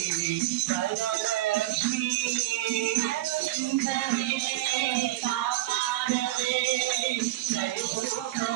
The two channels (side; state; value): left; quieter; 16.4 dB